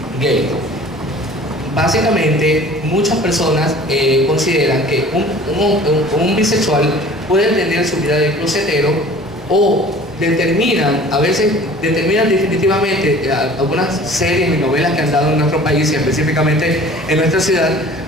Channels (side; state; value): both; normal; correlation 0.47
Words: gay. Básicamente, muchas personas consideran que un bisexual puede tener su vida de closetero o a veces determinan definitivamente algunas series y novelas que han dado en nuestro país y específicamente en nuestra ciudad,